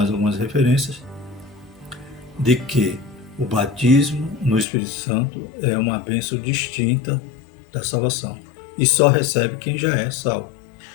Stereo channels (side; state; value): right; drops out; at 4.7 s